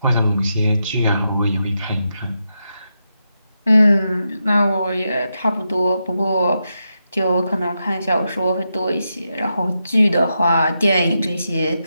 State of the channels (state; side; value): inverted; both; correlation -0.86